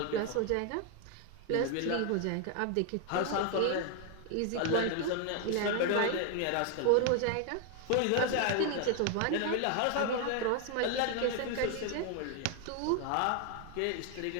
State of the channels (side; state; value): both; different; correlation 0.00